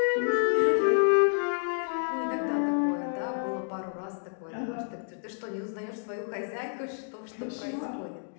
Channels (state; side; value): silent; right; digital silence